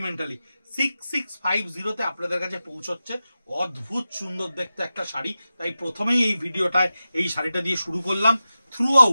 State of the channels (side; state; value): both; inverted; correlation -0.93